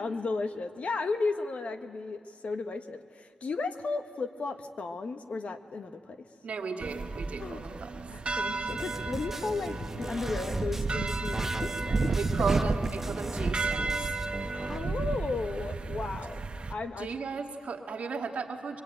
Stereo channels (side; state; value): both; normal; correlation 0.85